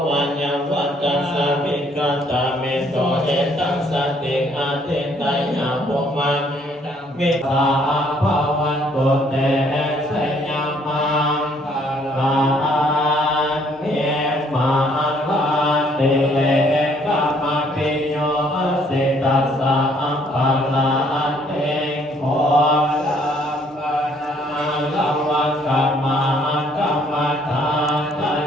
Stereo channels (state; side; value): normal; both; correlation 0.64